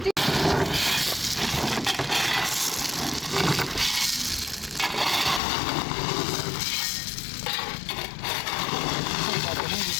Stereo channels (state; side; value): drops out; right; at 5.4 s